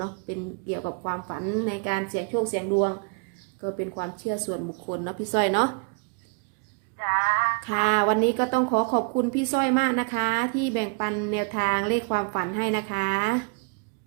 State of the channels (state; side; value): quieter; left; 34.2 dB